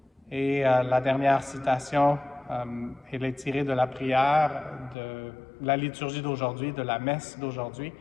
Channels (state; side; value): drops out; right; at 5.0 s